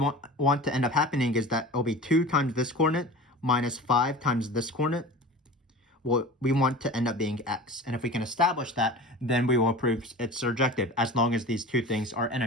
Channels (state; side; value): normal; both; correlation 0.35